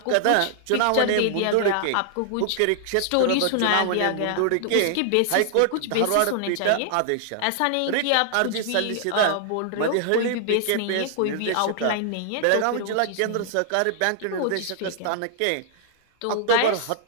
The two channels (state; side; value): different; both; correlation 0.00